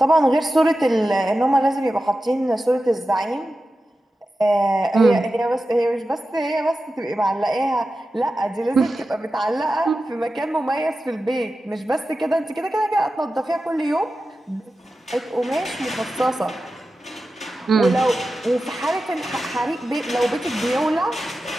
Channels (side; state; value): both; normal; correlation 0.93